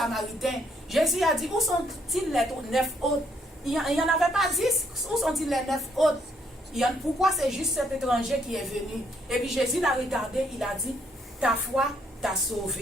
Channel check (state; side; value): normal; both; correlation 0.71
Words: Jésus a dit, où sont-ils les 9 autres? Il n'y en avait pas 10. Où sont-ils les 9 autres? Pourquoi c'est juste cet étranger qui est venu? Et puis Jésus l'a regardé, il a dit, ta foi t'a